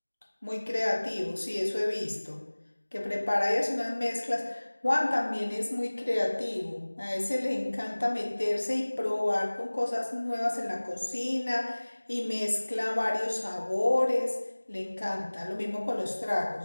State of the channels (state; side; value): inverted; both; correlation -1.00